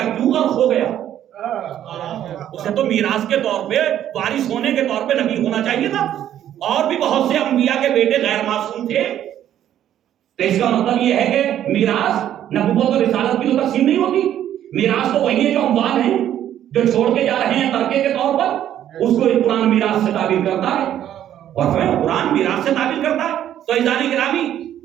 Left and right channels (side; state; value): left; quieter; 11.1 dB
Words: کیوں غرق ہو گیا؟ اسے تو میراث کے طور پہ، وارث ہونے کے طور پہ نبی ہونا چاہیے تھا. اور بھی بہت سے انبیاء کے بیٹے غیر معصوم تھے. تو اس کا مطلب یہ ہے کہ میراث نبوت اور رسالت کی تو تقسیم نہیں ہوتی. میراث تو وہی ہے جو اموال ہیں، جو چھوڑ کے جا رہے ہیں ترکے کے طور پر، اس کو قرآن میراث سے تعبیر کرتا ہے. اور قرآن میراث سے تعبیر کرتا ہے. تو عزیزان گرامی،